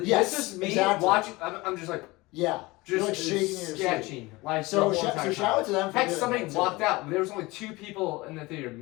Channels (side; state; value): right; quieter; 22.0 dB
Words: Yes, this is me exactly. watching. I'm just like. Yeah. Just You're like shaking in your sketching. seat. Like So the whole entire shout out to them for Heck, doing somebody that, too. walked out. There was only 2 people in the theater,